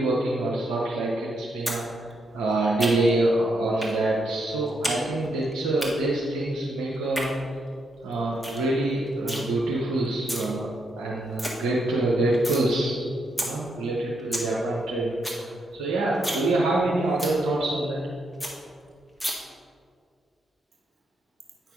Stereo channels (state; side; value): normal; both; correlation 0.78